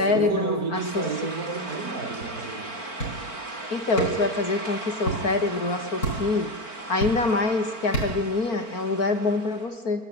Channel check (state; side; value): late; right; 4.4 ms